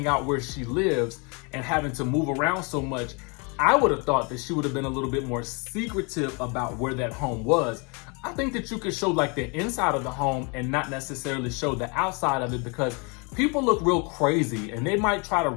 out where she lives and having to move around so much, I would have thought that she would have been a little bit more secretive about where that home was. I think that you could show like the inside of the home and not necessarily show the outside of it, because people look real crazy and they might try to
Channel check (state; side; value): quieter; right; 32.2 dB